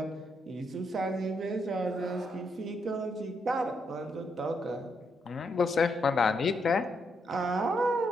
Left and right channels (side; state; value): both; normal; correlation 0.78